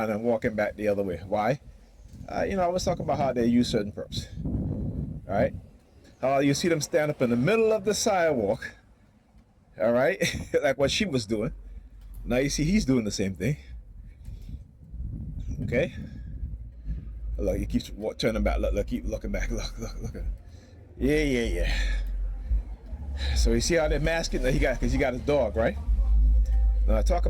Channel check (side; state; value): both; identical; correlation 1.00